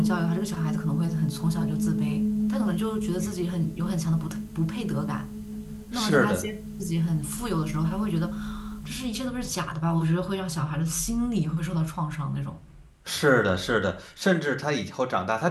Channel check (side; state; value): both; identical; correlation 1.00